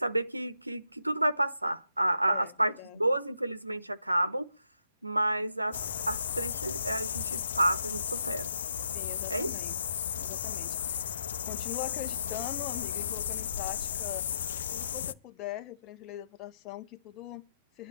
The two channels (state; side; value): inverted; both; correlation -0.80